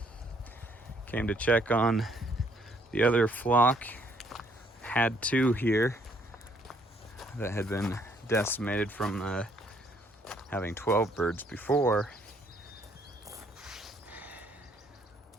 Came to check on the other flock. Had 2 here that had been decimated from having 12 birds before.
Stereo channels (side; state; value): both; normal; correlation 0.67